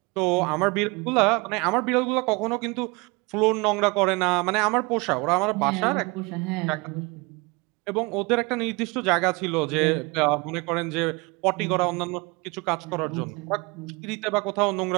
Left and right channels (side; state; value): left; quieter; 26.9 dB